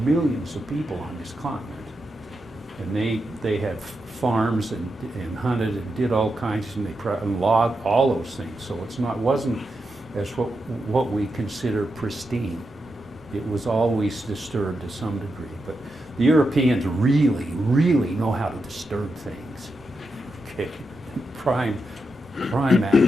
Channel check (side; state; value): both; normal; correlation 0.86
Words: of people on this continent. And they had farms and hunted and did all kinds, and logged all those things. So wasn't as what we consider pristine. It was always disturbed to some degree. But the Europeans really, really know how to disturb things. Okay, prime at